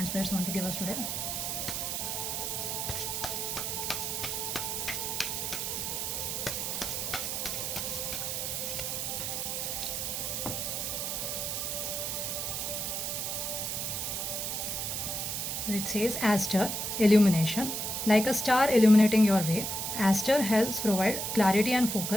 spirits want to give us today. So it says Aster, illumination. Like a star illuminating your way, Aster helps provide clarity and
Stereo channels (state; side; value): noise; right; hiss, 2 dB below the sound